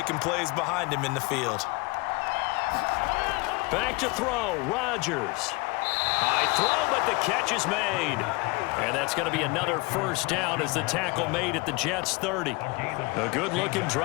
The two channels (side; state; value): right; quieter; 26.1 dB